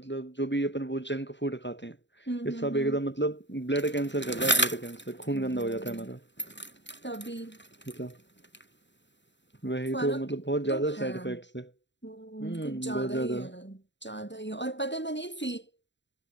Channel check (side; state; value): right; late; 0.52 ms